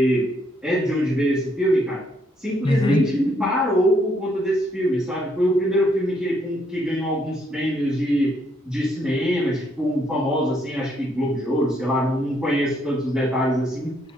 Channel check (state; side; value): normal; both; correlation 0.72